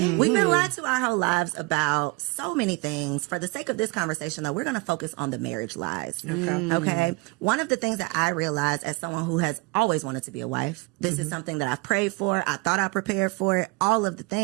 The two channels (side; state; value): left; quieter; 26.2 dB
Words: been lied to our whole lives about so many things. For the sake of this conversation, though, we're going to focus on the marriage lies, okay? One of the things that I realized as someone who has always wanted to be a wife, this is something that I've prayed for, I thought I prepared for it, all of the